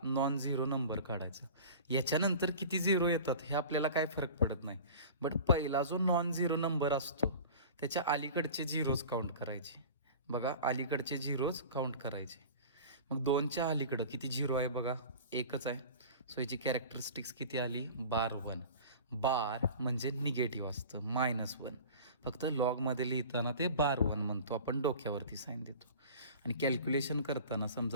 नॉन झिरो नंबर काढायचा. याच्यानंतर किती झिरो येतात हे आपल्याला काय फरक पडत नाही, बट पहिला जो नॉन झिरो नंबर असतो त्याच्या अलीकडचे झिरोज काउंट करायचे. बघा अलीकडचे झिरोज काउंट करायचे. मग 2च्या अलीकडं किती झिरो आहे बघा, 1च आहे. सो याची कॅरेक्टरिस्टिक्स किती आली, बार 1. बार म्हणजे निगेटिव्ह असतं, -1. फक्त लॉगमध्ये लिहिताना ते बार 1 म्हणतो आपण, डोक्यावरती साईन देतो. आणि कॅल्क्युलेशन करताना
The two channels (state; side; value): inverted; both; correlation -0.38